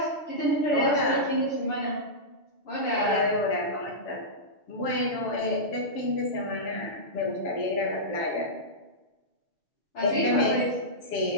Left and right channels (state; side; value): late; right; 7.2 ms